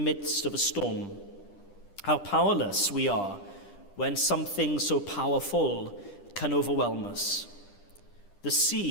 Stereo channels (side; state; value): right; late; 10 ms